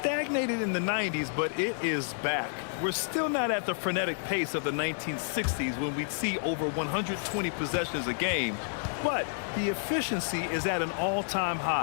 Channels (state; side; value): silent; right; digital silence